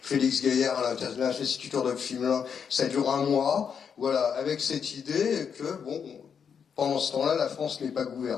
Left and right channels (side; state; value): right; quieter; 7.0 dB